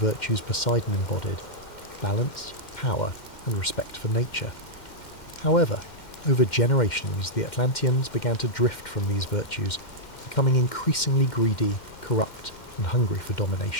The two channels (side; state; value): right; late; 2.1 ms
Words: Poseidon embodied: balance, power, and respect for nature. However, over generations, the Atlanteans began to drift from these virtues, becoming increasingly greedy, corrupt, and hungry for